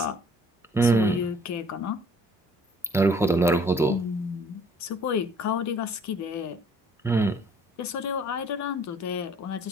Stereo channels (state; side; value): normal; both; correlation 0.57